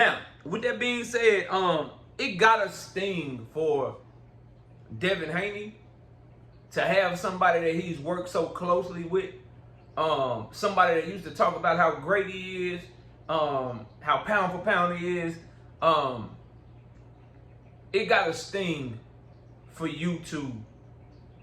with that being said, it gotta sting for Devin Haney to have somebody that he's worked so closely with, somebody that used to talk about how great he is, how pound for pound he is. It gotta sting for you to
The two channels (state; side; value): identical; both; correlation 1.00